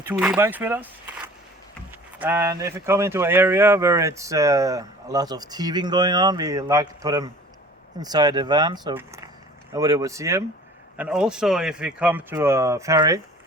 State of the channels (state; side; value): normal; both; correlation 0.46